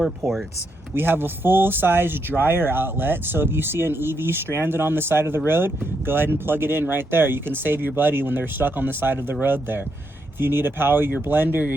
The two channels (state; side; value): normal; both; correlation 0.79